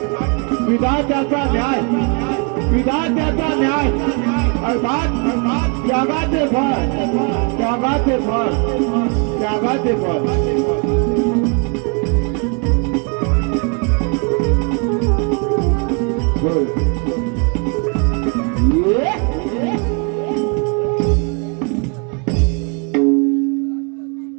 विधात्याचा न्याय विधात्याचा न्याय अर्थात त्यागाचे फळ त्यागाचे फळ त्यागाचे फळ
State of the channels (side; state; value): left; quieter; 35.7 dB